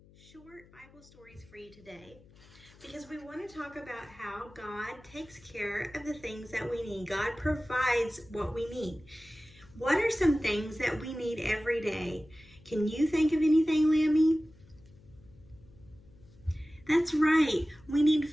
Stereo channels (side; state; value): left; noise; hum, 25 dB below the sound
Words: short Bible stories for you today because we want to talk about how God takes care of the things that we need. God provides what we need. What are some things that we need every day? Can you think of anything, Lammy? That's right. We need